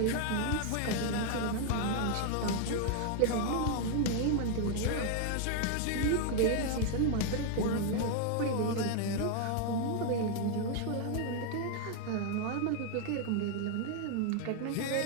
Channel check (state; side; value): different; both; correlation 0.00